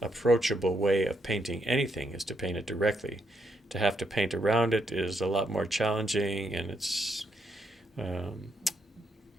way of painting anything, is to paint it directly. To have to paint around it is a lot more challenging, and it's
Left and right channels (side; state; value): both; normal; correlation 0.78